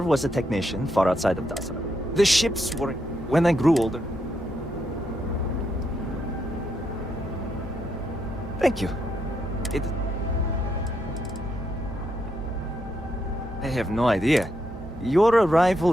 was a technician far outside of Dasra. The ships were... when I grew older. Thank you. I have no idea. Your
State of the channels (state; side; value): normal; both; correlation 0.79